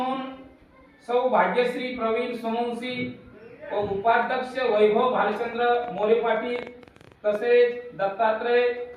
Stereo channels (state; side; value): identical; both; correlation 1.00